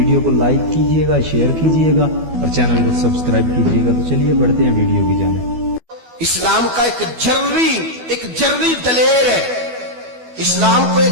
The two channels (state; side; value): late; left; 12 ms